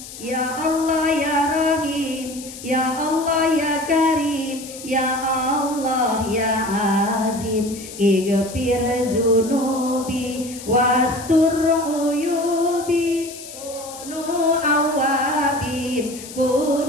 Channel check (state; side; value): noise; left; hiss, 14 dB below the sound